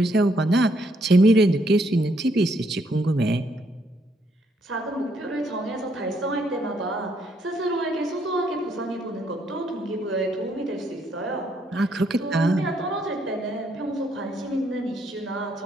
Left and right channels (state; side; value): normal; both; correlation 0.72